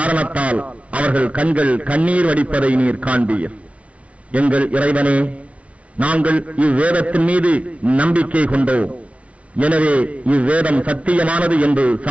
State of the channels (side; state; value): left; late; 0.064 ms